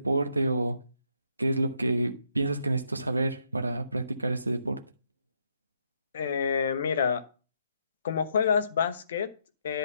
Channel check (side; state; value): both; inverted; correlation -0.76